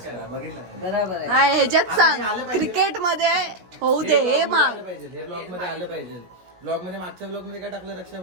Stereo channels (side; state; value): left; late; 17 ms